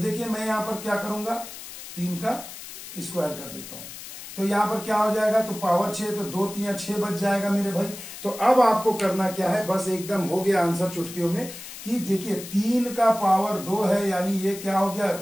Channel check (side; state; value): left; noise; hiss, 12 dB below the sound